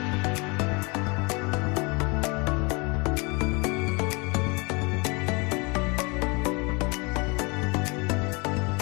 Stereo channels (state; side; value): quieter; right; 29.2 dB